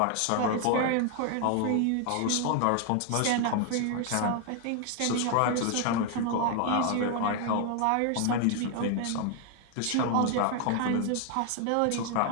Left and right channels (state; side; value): different; both; correlation 0.00